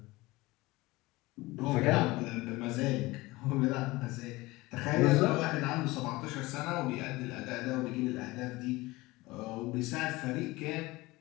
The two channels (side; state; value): right; quieter; 20.8 dB